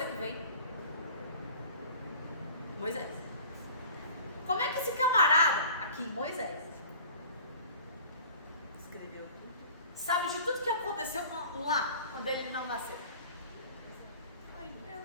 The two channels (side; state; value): both; inverted; correlation -0.45